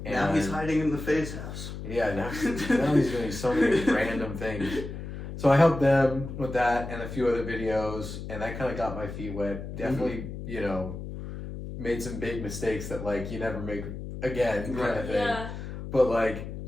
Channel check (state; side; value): noise; left; hum, 8 dB below the sound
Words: And now he's hiding in the Faye's house. Yeah, now he's doing so many random things. So I helped them with that and a few other videos, and that kind of got my feet wet. Definitely, made some big mistakes that like you never make again kind of thing. Yeah. But like